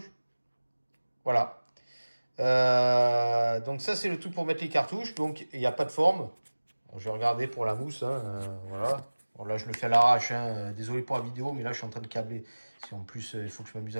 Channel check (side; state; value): both; inverted; correlation -1.00